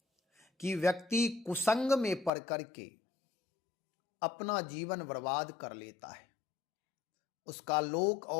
कि व्यक्ति कुसंग में पड़ करके अपना जीवन बर्बाद कर लेता है। उसका लोक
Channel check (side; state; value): right; drops out; at 2.3 s